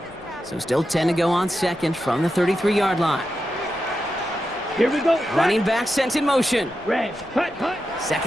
So still 10 to go on 2nd from the 33-yard line. Here we go. Running back sent in motion. Red. Hut, hut.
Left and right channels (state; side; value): noise; left; rumble, 26 dB below the sound